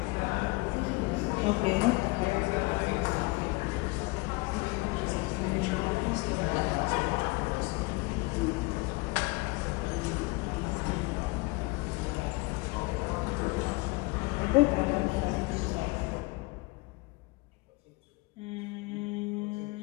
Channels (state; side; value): quieter; right; 25.3 dB